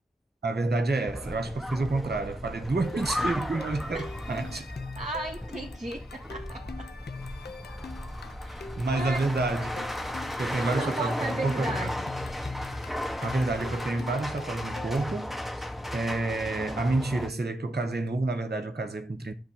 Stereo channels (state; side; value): normal; both; correlation 0.82